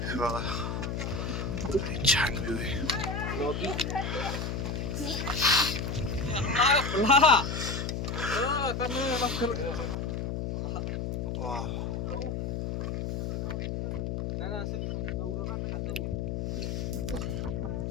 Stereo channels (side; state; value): left; noise; hum, 2 dB below the sound